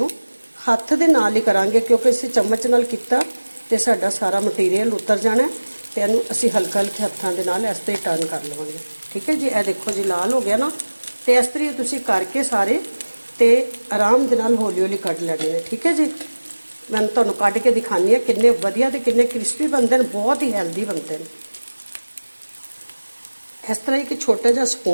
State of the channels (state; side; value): inverted; both; correlation -1.00